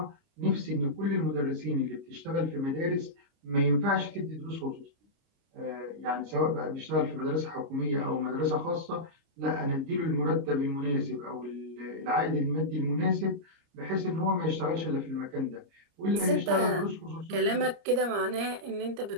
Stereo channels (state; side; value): late; left; 30 ms